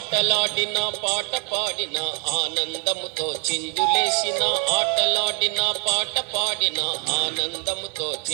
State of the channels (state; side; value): quieter; left; 37.7 dB